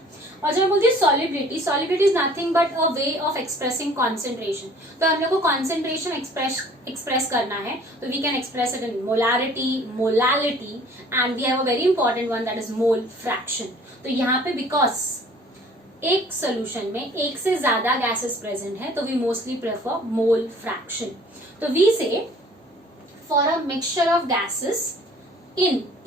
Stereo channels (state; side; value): normal; both; correlation 0.52